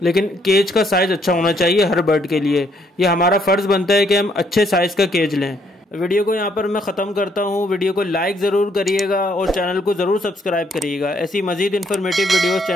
लेकिन केज का साइज़ अच्छा होना चाहिए हर बर्ड के लिए। ये हमारा फ़र्ज़ बनता है कि हम अच्छे साइज़ का केज लें। वीडियो को यहाँ पर मैं ख़त्म करता हूँ। वीडियो को लाइक ज़रूर करिएगा और चैनल को ज़रूर सब्सक्राइब करिएगा। ऐसी मज़ीद इन्फॉर्मेटिव वीडियोस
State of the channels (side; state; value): both; normal; correlation 0.69